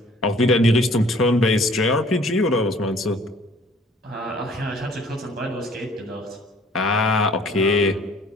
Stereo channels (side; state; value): both; normal; correlation 0.55